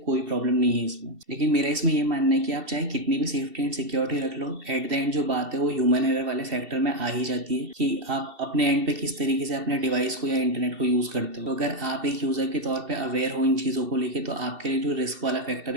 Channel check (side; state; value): left; late; 2.7 ms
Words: कोई प्रॉब्लम नहीं है इसमें। लेकिन मेरा इसमें ये मानना है कि आप चाहे कितनी भी सेफ्टी एंड सिक्योरिटी रख लो, एट द एंड जो बात है वो ह्यूमन एरर वाले फैक्टर में आ ही जाती है कि आप अपने एंड पे किस तरीके से अपने डिवाइस को या इंटरनेट को यूज़ करते हो। तो अगर आप एक यूज़र के तौर पर अवेयर हो इन चीज़ों को लेकर तो आपके लिए जो रिस्क वाला फैक्टर